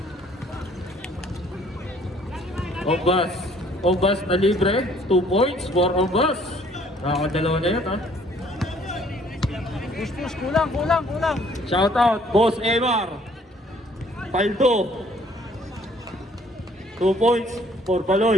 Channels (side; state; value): both; normal; correlation 0.60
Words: Ombas na libre, 2 points for Ombas. Nakakadalawa na yan, ha? Push, kulang. Shout out, Boss Emar. Paldo. 2 points for